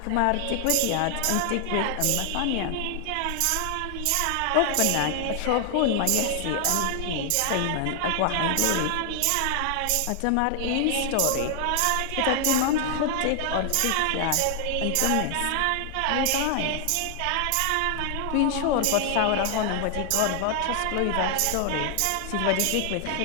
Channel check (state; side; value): different; both; correlation 0.00